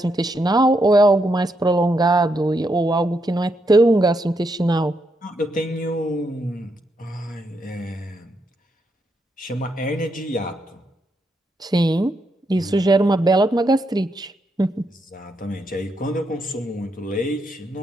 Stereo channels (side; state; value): both; normal; correlation 0.80